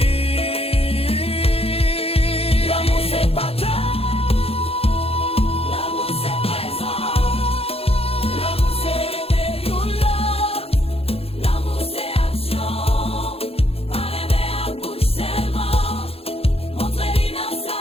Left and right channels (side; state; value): right; late; 0.28 ms